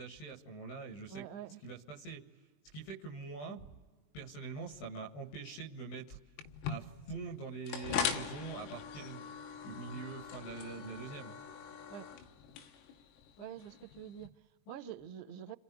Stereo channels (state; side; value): late; right; 21 ms